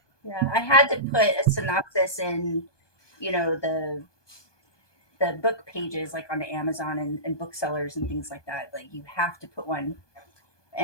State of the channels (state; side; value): late; right; 1.2 ms